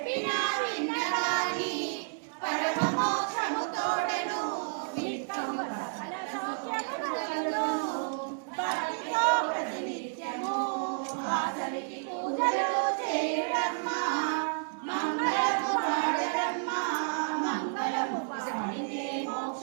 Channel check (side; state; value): left; silent; digital silence